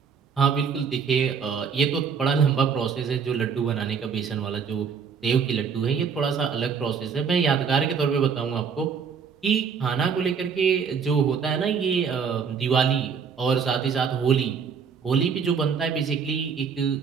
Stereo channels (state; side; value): quieter; left; 6.3 dB